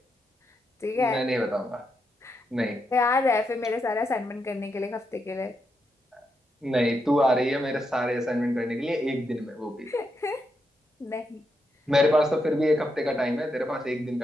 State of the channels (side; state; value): both; normal; correlation 0.83